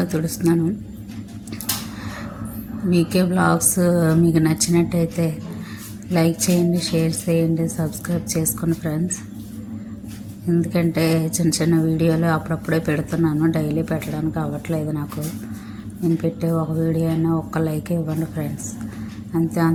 తుడుస్తున్నాను. మీకే బ్లాగ్స్ మీకు నచ్చినట్టయితే లైక్ చేయండి, షేర్ చేయండి, సబ్స్క్రైబ్ చేసుకోండి ఫ్రెండ్స్. ఎందుకంటే చిన్న చిన్న వీడియోలు అప్పుడప్పుడే పెడుతున్నాను, డైలీ పెట్టడానికి అవ్వట్లేదు నాకు. నేను పెట్టే ఒక వీడియో అయినా ఒక్క లైక్ ఇవ్వండి ఫ్రెండ్స్.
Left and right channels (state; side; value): identical; both; correlation 1.00